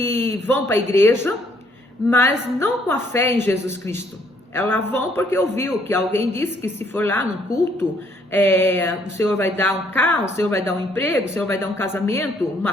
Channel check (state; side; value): normal; both; correlation 0.66